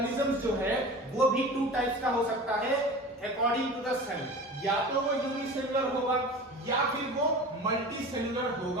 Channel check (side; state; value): both; normal; correlation 0.35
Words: जो है वो भी टू टाइप्स का हो सकता है अकॉर्डिंग टू द सेल। या तो वो यूनिसेलुलर होगा या फिर वो मल्टीसेलुलर